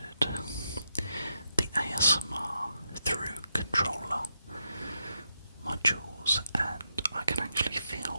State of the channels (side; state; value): both; inverted; correlation -0.83